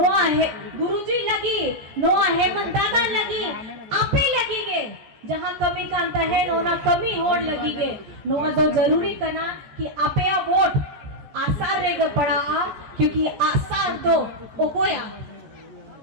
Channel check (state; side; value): late; left; 14 ms